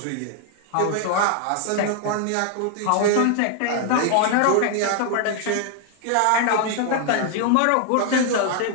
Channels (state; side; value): different; both; correlation 0.00